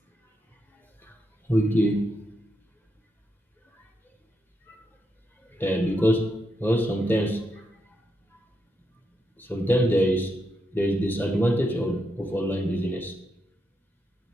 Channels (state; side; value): normal; both; correlation 0.82